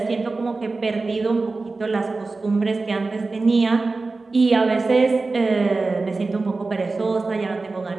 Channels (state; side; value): quieter; left; 3.7 dB